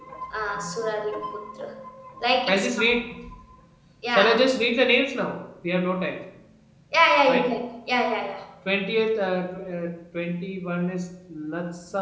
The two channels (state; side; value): identical; both; correlation 1.00